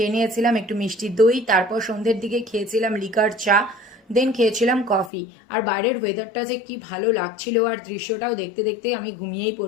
নিয়েছিলাম একটু মিষ্টি দই, তারপর সন্ধ্যের দিকে খেয়েছিলাম লিকার চা, দেন খেয়েছিলাম কফি। আর বাইরের ওয়েদারটা যে কি ভালো লাগছিল, আর দৃশ্যটাও দেখতে দেখতে আমি ঘুমিয়েই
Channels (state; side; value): drops out; right; at 5.1 s